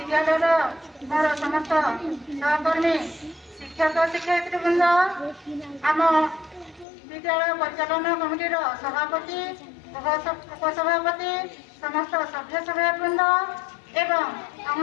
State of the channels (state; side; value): drops out; right; at 6.9 s